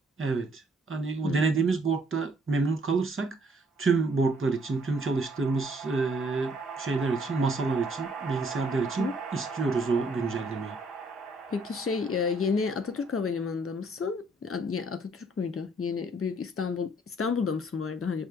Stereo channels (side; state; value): both; normal; correlation 0.65